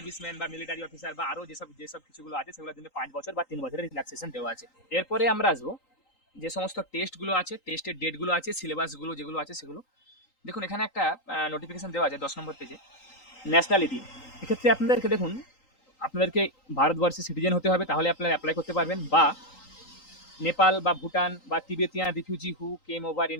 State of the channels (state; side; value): late; right; 3.8 ms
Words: বা মিলিটারি অফিসার বা আরও যেসব যেসব কিছুগুলো আছে সেগুলোর জন্য 5 বছর বা 3 বছরের রিল্যাক্সেশন দেওয়া আছে। এরপরে আমরা আসবো যে সমস্ত টেস্টগুলো আছে, টেস্টের ডেটগুলো আছে, সিলেবাসগুলো যেগুলো আছে সেগুলো দেখুন। এখানে একটা নোটিফিকেশন দেওয়া আছে 10 নম্বর পেজে, ন্যাশনালিটি। এক্ষেত্রে আপনাদেরকে দেখুন আপনাদেরকে ভারতবর্ষের সিটিজেন হতে হবে, তাহলে আপনারা অ্যাপ্লাই করতে পারবেন, বা নেপাল বা ভুটান বা তিবেতিয়ান রিফিউজি হু কেম ওভার